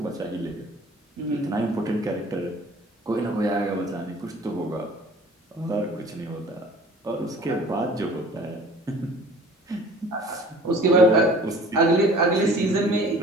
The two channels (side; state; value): both; normal; correlation 0.48